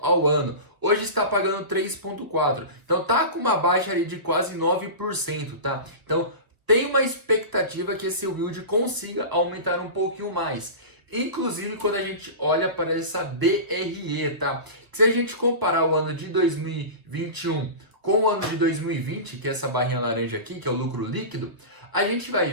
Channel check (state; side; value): late; left; 1.2 ms